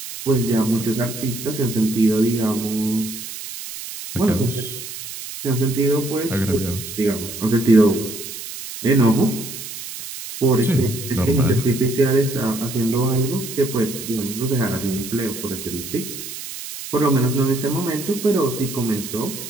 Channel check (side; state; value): right; noise; hiss, 10 dB below the sound